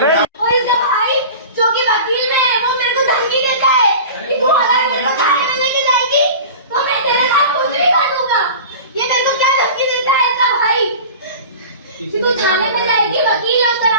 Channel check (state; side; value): inverted; both; correlation -0.36